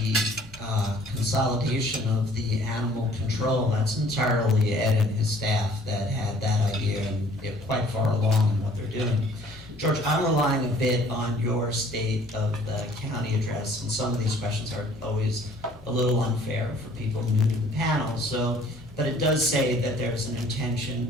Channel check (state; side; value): normal; both; correlation 0.55